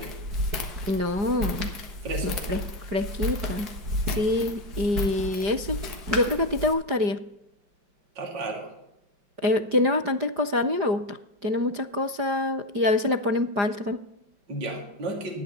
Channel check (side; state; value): left; late; 4.9 ms